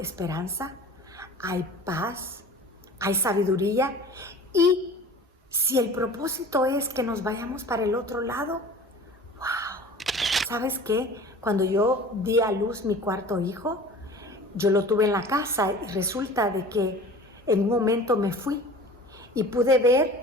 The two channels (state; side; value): normal; both; correlation 0.41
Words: hay paz, hay sabiduría. Y si el propósito es que nos vayamos para el otro lado, ¡wow! ¿Sabes qué? Cuando yo di a luz mi cuarto hijo, yo lo tuve en la casa y resulta de que en un momento me fui y pude